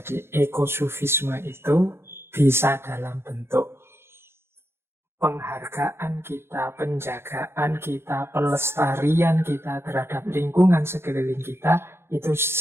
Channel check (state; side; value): late; left; 0.12 ms